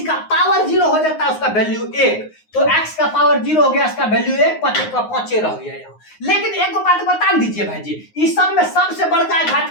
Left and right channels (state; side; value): late; right; 9.6 ms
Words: का पावर 0 हो जाता है, उसका वैल्यू 1, तो x का पावर 0 हो गया, इसका वैल्यू 1, 5 का 5 रह गया यहाँ। लेकिन एक बात बता दीजिए भाई जी, इस सब में सबसे बड़का घात